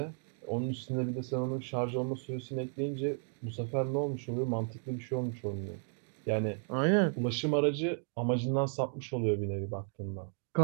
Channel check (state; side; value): silent; left; 55 dB below the other